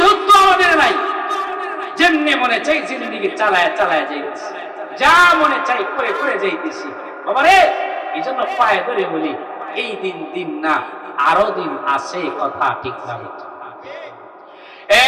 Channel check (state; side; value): identical; both; correlation 1.00